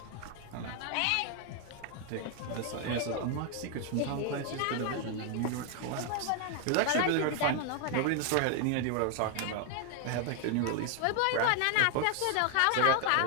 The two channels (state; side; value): different; both; correlation 0.00